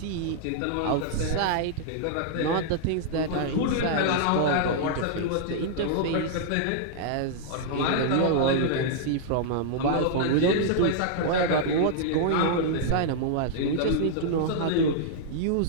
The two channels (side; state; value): both; different; correlation -0.01